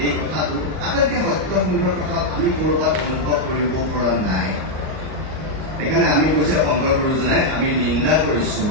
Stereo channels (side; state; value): left; late; 38 ms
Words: এই কথাটো আটাইতকৈ সত্য সুন্দৰ কথা আমি ক'ৰবাত অনুভৱ কৰিব পৰা নাই। সেইকাৰণে আমি কৈছে শংকৰ গুৰুজনাই আমি নিন্দা কৰিছো